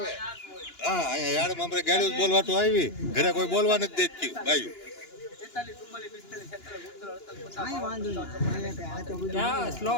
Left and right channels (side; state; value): right; late; 2.9 ms